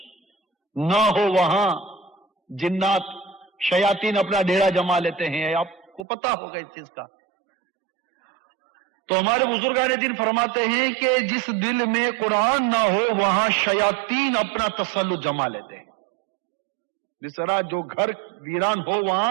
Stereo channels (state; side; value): drops out; left; at 6.1 s